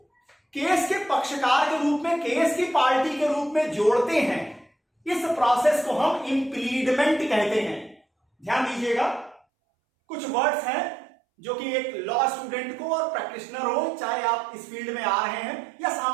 केस के पक्षकार के रूप में, केस की पार्टी के रूप में जोड़ते हैं, इस प्रोसेस को हम इंप्लीडमेंट कहते हैं। ध्यान दीजिएगा, कुछ वर्ड्स हैं जो कि एक लॉ स्टूडेंट को और प्रैक्टिशनर हो, चाहे आप इस फील्ड में आ रहे हैं या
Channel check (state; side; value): drops out; left; at 9.4 s